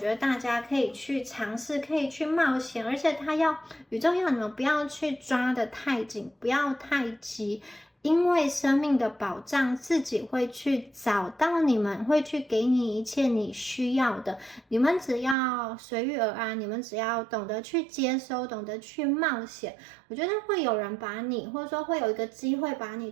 得大家可以去尝试，可以去冒险，而且宇宙要你们不要去抓得太紧，不要太急，因为生命的保障自己会去找到你们，会去给你一切你需要的，你们只要随遇而安，你们只要懂得去接收，懂得去冒险，我觉得会有人把你，或者说会有一个机会把你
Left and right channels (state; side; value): drops out; left; at 15.4 s